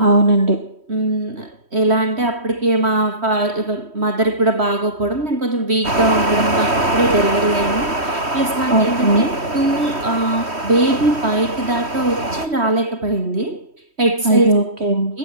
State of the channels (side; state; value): left; late; 3.1 ms